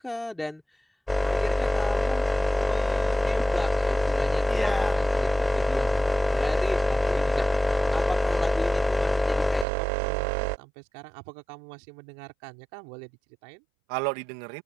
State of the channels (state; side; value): drops out; left; at 9.7 s